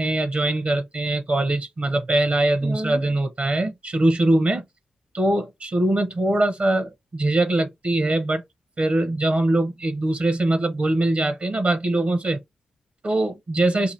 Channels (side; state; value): both; normal; correlation 0.91